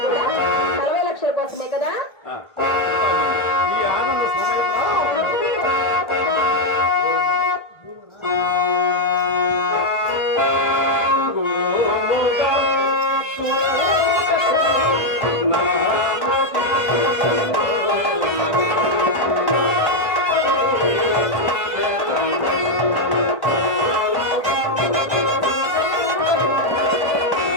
కూడా 40 లక్షల కోసమే కదా. ఆ, చింతామణి, ఈ ఆనంద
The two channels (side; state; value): right; late; 1.3 ms